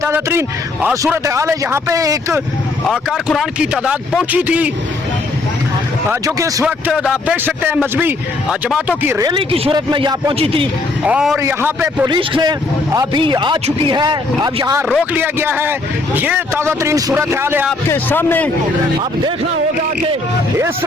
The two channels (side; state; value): right; quieter; 3.3 dB